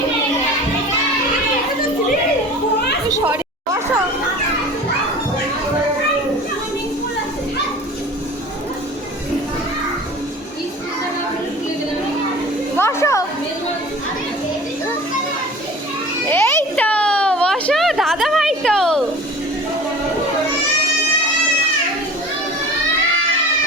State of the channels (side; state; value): both; normal; correlation 0.40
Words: সরি বসো, বসো, এই তো বসো, দাদা ভাই তো